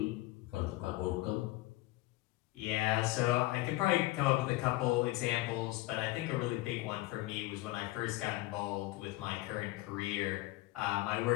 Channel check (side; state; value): right; quieter; 18.8 dB